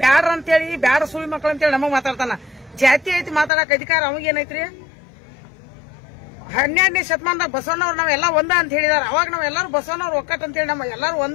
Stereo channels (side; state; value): right; drops out; at 3.5 s